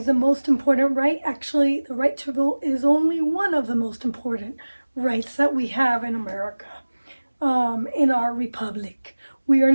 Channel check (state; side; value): inverted; both; correlation -1.00